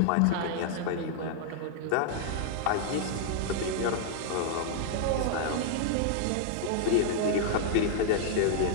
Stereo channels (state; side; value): different; both; correlation -0.01